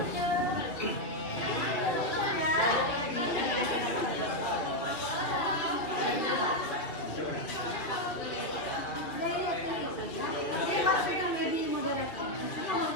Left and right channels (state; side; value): late; right; 2.5 ms